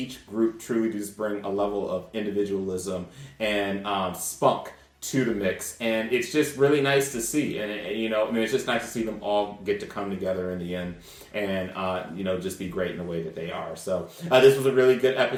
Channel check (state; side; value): identical; both; correlation 1.00